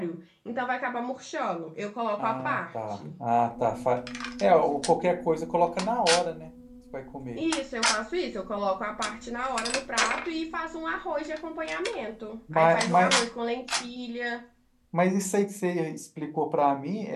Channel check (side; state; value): both; identical; correlation 1.00